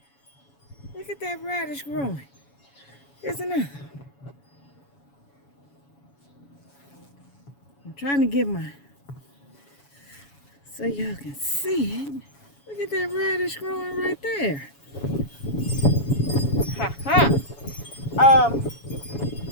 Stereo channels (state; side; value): late; right; 7.1 ms